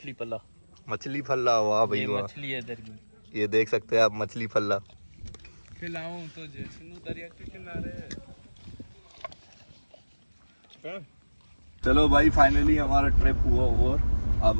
पला मछली फल्ला। वाह भाई ये वाह, मछली है इधर की। ये देख सकते हैं आप मछली फल्ला। खिलाऊं तो जैसे दरिया के किनारे चलो भाई फाइनली हमारा ट्रिप हुआ ओवर।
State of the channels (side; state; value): both; inverted; correlation -1.00